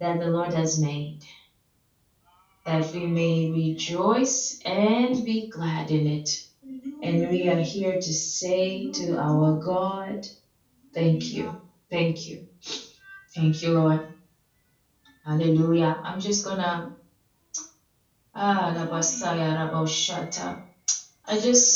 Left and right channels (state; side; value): identical; both; correlation 1.00